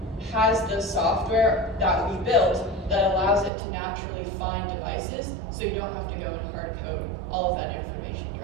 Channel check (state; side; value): drops out; left; at 3.5 s